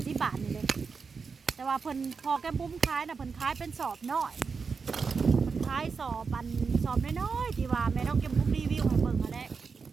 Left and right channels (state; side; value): quieter; left; 5.2 dB